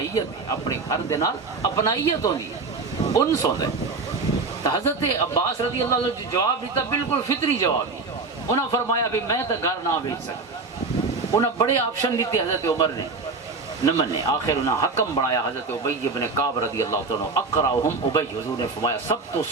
ہے، اپنے گھر دے نال اپنائیت ہوندی ہے، انس ہوندے۔ تو حضرت عباس رضی اللہ عنہ جو جواب دیتا بالکل فطری جواب ہی، انہوں فرمایا بھی میں تو گھر نہ بیچ سکتا۔ انہوں بڑے آپشن دیتے حضرت عمر نے، نہ منے، آخر انہوں حکم بنایا حضرت ابی ابن کعب رضی اللہ عنہ، اقرأہم ابی، حضور نے فرمایا سب تو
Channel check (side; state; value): left; quieter; 4.0 dB